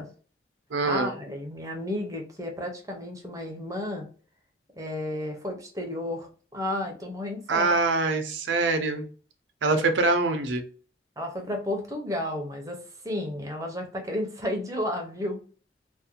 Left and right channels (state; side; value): normal; both; correlation 0.20